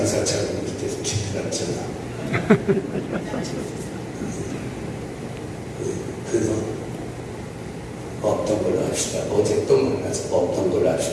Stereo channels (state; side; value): identical; both; correlation 1.00